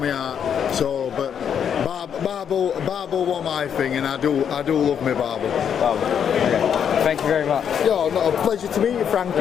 out. So, but barbel was my thing, and I do love my barbel. Okay. Thank you very much. Yo, not a pleasure to meet you,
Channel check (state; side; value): quieter; right; 8.1 dB